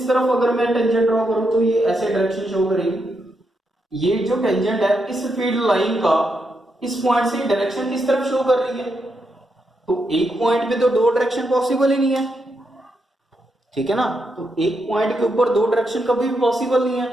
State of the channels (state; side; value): normal; both; correlation 0.82